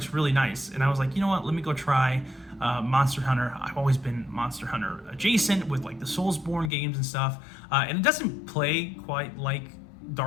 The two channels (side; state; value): right; drops out; at 6.7 s